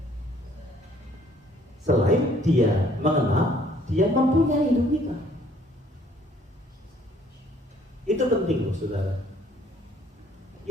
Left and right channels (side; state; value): both; normal; correlation 0.61